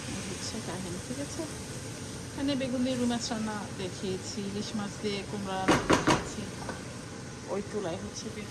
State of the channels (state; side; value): identical; both; correlation 1.00